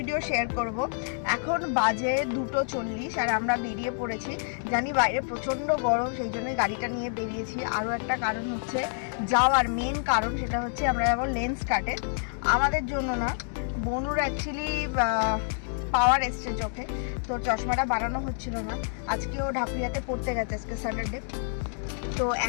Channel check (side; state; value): right; silent; 56 dB below the other